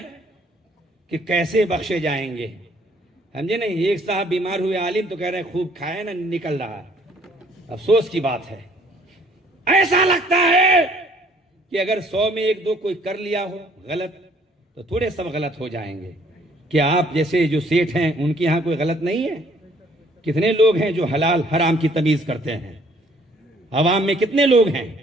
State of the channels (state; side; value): normal; both; correlation 0.61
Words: کہ کیسے بخشے جائیں گے۔ سمجھے نہیں، ایک صاحب بیمار ہوئے عالم تو کہہ رہے ہیں خوب کھائے نا نکل رہا ہے۔ افسوس کی بات ہے، ایسا لگتا ہے کہ اگر 100 میں 1-2 کوئی کر لیا ہو غلط تو تھوڑے سب غلط ہو جائیں گے۔ کیا آپ جیسے جو سیٹھ ہیں ان کے ہاں کوئی غلط نہیں ہے؟ کتنے لوگ ہیں جو حلال حرام کی تمیز کرتے ہیں؟ عوام میں کتنے لوگ ہیں؟